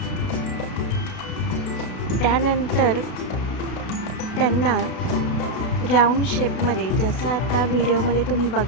त्यानंतर त्यांना राऊंड शेपमध्ये, जसं आता व्हिडिओमध्ये तुम्ही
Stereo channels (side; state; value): right; late; 32 ms